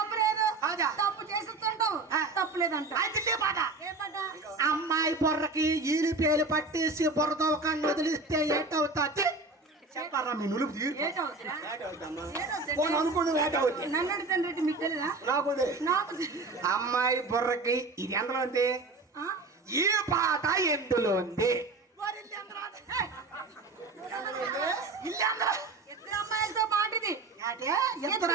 లేదు తప్పు చేస్తుంటావు తప్పు లేదంట అమ్మాయి బొర్రకి ఈలు పేలు పట్టేసి బుర్రతో కన్ను వదిలిస్తే ఏంటవుతుంది చెప్పారా మీ నులుపు అనుకుని నన్ను తండ్రి తెలీదా? నాకు నాకు అమ్మాయి బుర్రకి ఇది ఎందులో ఉంది? ఆ? ఈ పాట ఎందులో ఉంది? వారి ఇల్లు అందరూ ఏయ్! ఇల్లు అందరూ ఇద్దరు అమ్మాయిలతో మాట ఇది. ఇద్దరు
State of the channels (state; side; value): quieter; left; 3.5 dB